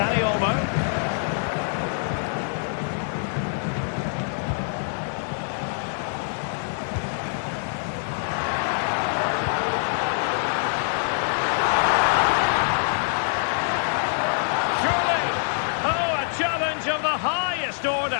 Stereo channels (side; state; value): right; silent; digital silence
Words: Olmo. Challenge of the highest